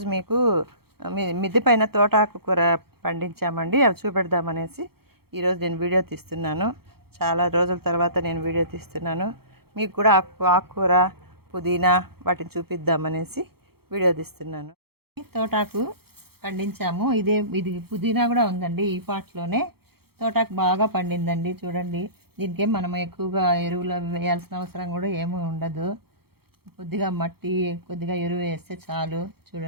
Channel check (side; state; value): left; late; 0.95 ms